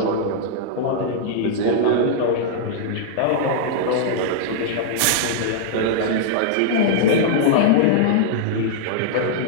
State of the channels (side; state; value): both; different; correlation -0.02